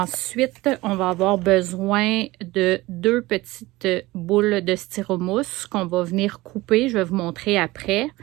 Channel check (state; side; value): quieter; left; 19.7 dB